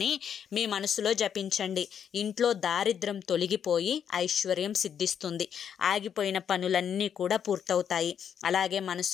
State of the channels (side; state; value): right; quieter; 8.3 dB